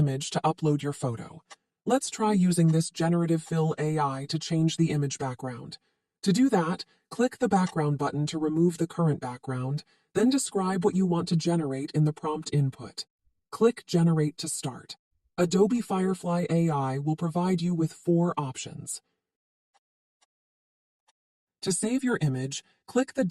to upload your photo. Let's try using this Generative Fill AI to change the image background. To do that, click the Background button to remove the current background, then describe what you want to generate in the prompt input. Click Generate to start. Adobe Firefly AI will provide you with 4 options. To save your image, click the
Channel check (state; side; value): identical; both; correlation 1.00